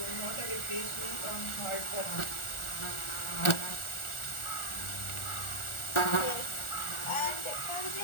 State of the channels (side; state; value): right; late; 1.4 ms